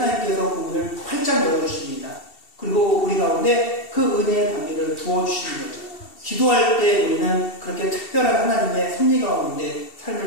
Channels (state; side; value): late; right; 2.7 ms